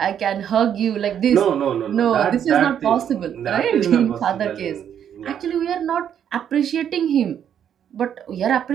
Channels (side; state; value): left; quieter; 9.1 dB